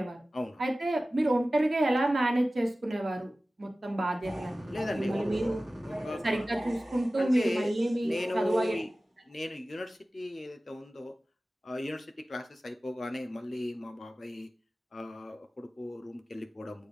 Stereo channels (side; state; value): both; normal; correlation 0.96